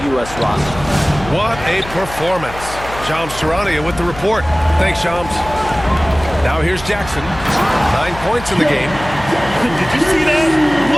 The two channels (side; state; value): left; noise; hum, 14 dB below the sound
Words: U.S. roster. What a performance. Shams Charania with the report. Thanks, Shams. Now here's Jackson. 9 points in the game. Did you see that?